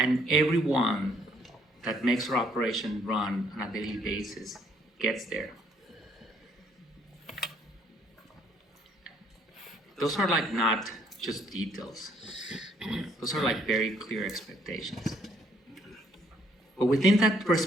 everyone that makes our operation run on a daily basis gets there. those are like not just details. Those are like very clear expectations. But within that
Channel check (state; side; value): normal; both; correlation 0.66